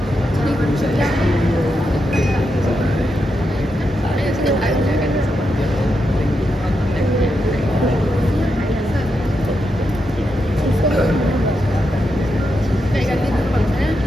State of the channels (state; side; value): normal; both; correlation 0.85